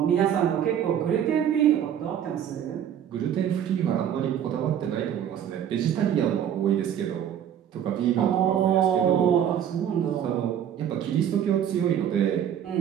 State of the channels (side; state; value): left; quieter; 9.6 dB